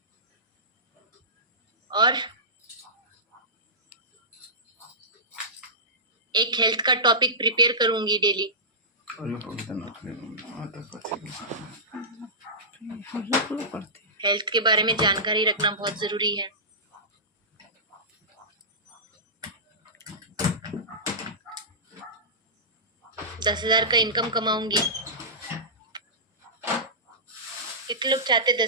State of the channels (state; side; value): normal; both; correlation -0.20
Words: और एक हेल्थ का टॉपिक प्रिपेयर करूंगी डेली। हेल्थ के बारे में जानकारी रखना बहुत जरूरी है। दस 10,000 का इनकम कमाऊंगी। कितने लोग चाहते